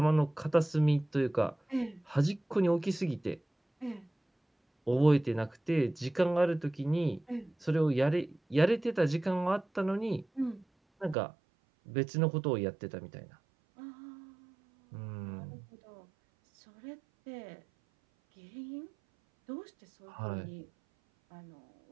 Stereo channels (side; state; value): left; drops out; at 11.2 s